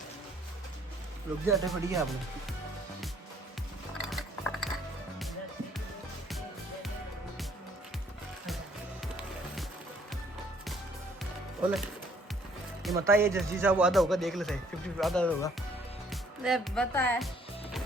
रुक जाते पड़ी है आप लोग बोले ये मता ये जस्जी साहब आधा होगा देख ले सही 50 आधा होगा ले बता है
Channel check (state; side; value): normal; both; correlation 0.63